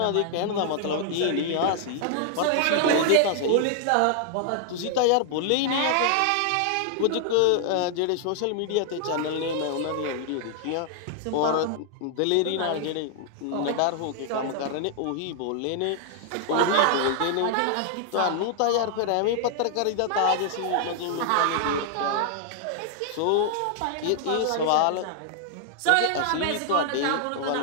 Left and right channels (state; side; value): different; both; correlation 0.00